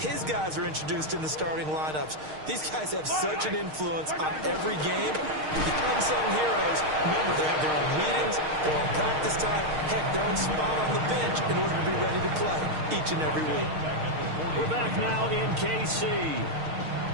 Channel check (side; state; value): left; late; 6.5 ms